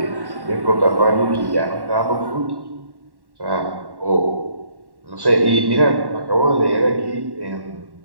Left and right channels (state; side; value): late; left; 1.1 ms